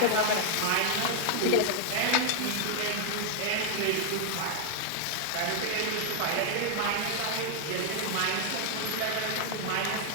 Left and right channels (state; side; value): different; both; correlation 0.00